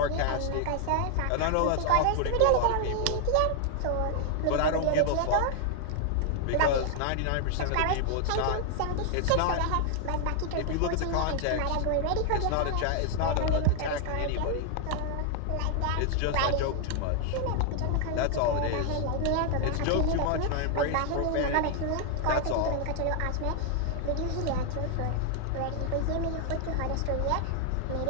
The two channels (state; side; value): different; both; correlation 0.00